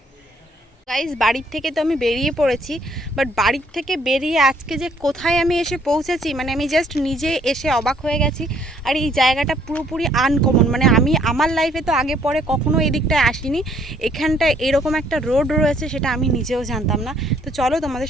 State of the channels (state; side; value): normal; both; correlation 0.65